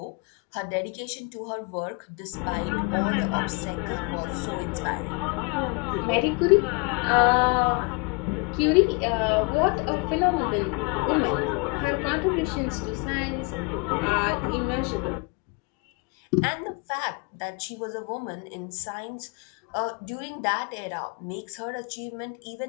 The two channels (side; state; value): right; quieter; 29.7 dB